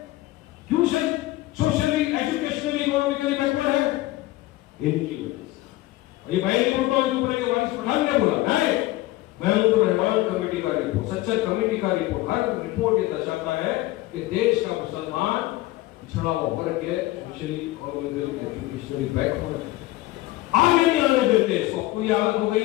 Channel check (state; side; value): quieter; right; 17.5 dB